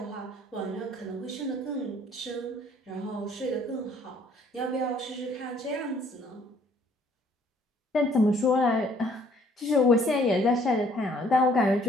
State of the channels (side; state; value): both; normal; correlation 0.61